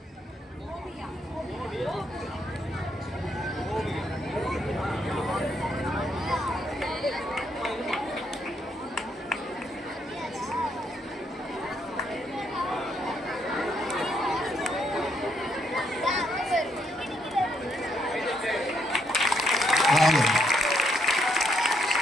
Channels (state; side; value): normal; both; correlation 0.74